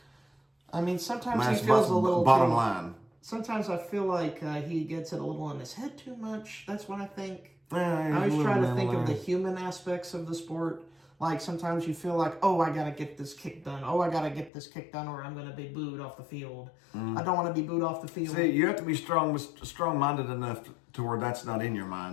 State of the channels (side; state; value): right; drops out; at 14.5 s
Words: I mean, sometimes he feels a little bottom line. Sometimes I feel like he gets it a little in his head too much. That's what I think. I always try to think of the human aspects of the sport. Like sometimes you feel like, oh, I gotta get this kick done. Oh, I gotta get this kick done, or I'm gonna be booed off the field. I don't want to be booed off the field. See, you have to be strong-minded enough to where that's not in your